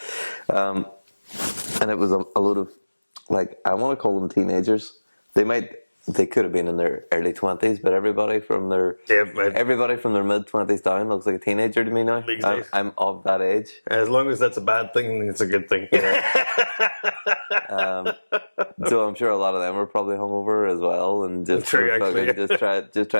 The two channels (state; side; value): inverted; both; correlation -1.00